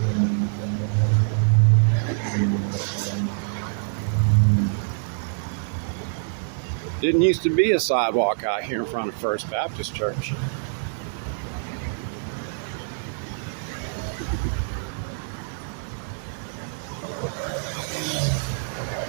Didn't used to be a sidewalk out here in front of First Baptist Church.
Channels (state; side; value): silent; left; digital silence